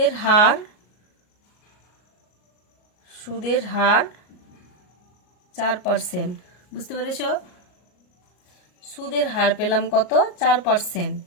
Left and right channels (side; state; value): right; late; 33 ms